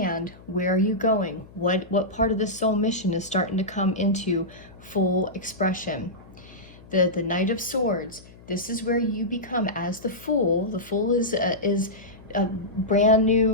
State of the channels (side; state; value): left; noise; hum, 22 dB below the sound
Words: where are you going, what part of the soul mission is starting to come into full expression. The Knight of Swords, this is where you become as the Fool. The Fool is a brand